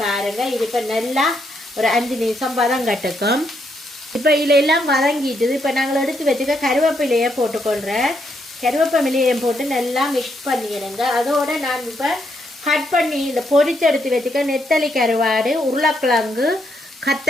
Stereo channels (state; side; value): normal; both; correlation 0.77